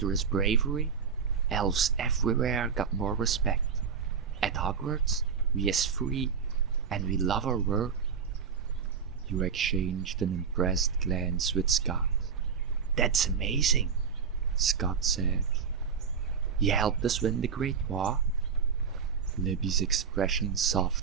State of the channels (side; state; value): left; quieter; 6.4 dB